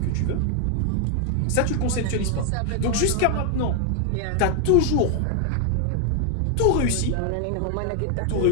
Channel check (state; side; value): different; both; correlation 0.00